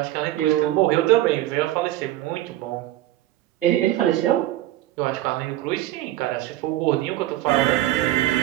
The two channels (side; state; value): left; quieter; 15.0 dB